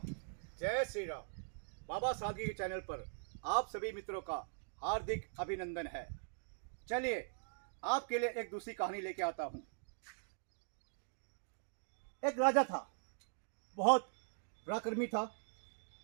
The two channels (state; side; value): silent; left; digital silence